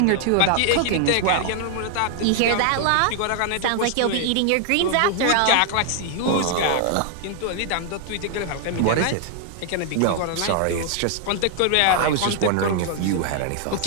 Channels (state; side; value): different; both; correlation -0.01